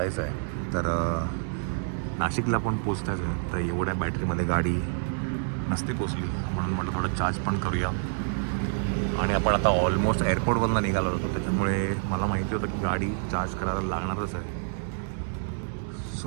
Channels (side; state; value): left; silent; digital silence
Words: आहे. तर नाशिकला पण पोचतायचं आहे. तर एवढ्या बॅटरीमध्ये गाडी नसते पोचली म्हणून म्हटलं थोडं चार्ज पण करूया. आणि आपण आता ऑलमोस्ट एअरपोर्टवरनं निघालो होतो त्याच्यामुळे मला माहिती होतं की गाडी चार्ज करायला लागणारच आहे.